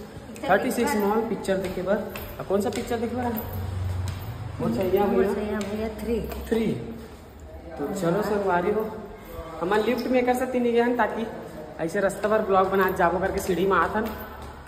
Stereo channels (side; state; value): both; identical; correlation 1.00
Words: 36 मॉल पिक्चर देखे बर। कौन सा पिक्चर देखे बर? भैया 3। तो चलो संगवारी हो, हमन लिफ्ट में कर सकती नहीं गए ताकि ऐसे रास्ता पर ब्लॉग बना जाबो करके सीढ़ी में आथन